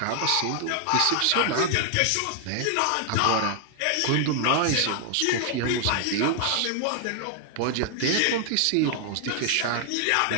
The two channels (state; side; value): different; both; correlation 0.00